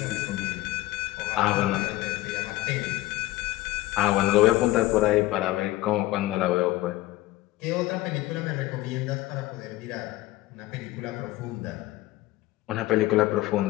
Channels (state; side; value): quieter; right; 17.3 dB